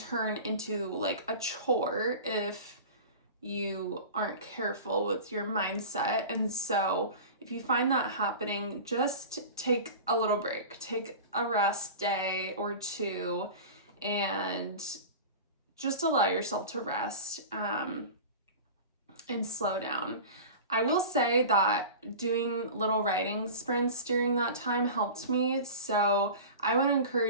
into like a chore if you aren't careful with your mindset. And so if you find that happening, just take a little break, take a rest day or two, and just allow yourself to rest and slow down. I will say that doing little writing sprints during that time helped me, so I would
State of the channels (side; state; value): both; inverted; correlation -0.34